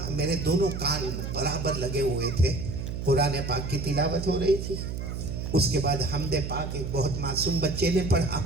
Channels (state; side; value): noise; right; hum, 5 dB below the sound